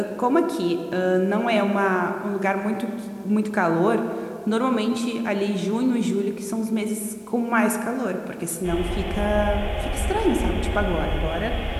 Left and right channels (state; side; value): identical; both; correlation 1.00